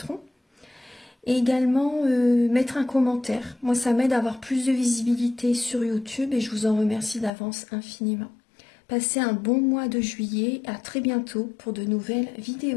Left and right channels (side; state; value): right; drops out; at 7.3 s